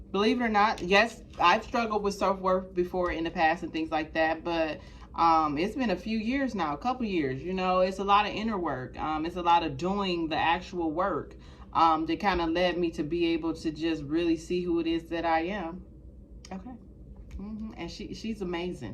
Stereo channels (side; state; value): both; identical; correlation 1.00